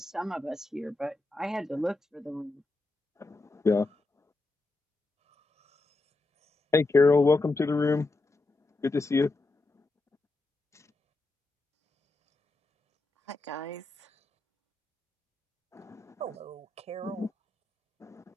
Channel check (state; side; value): quieter; right; 3.1 dB